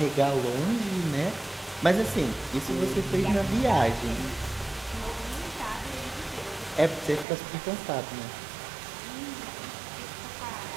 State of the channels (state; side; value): drops out; left; at 7.2 s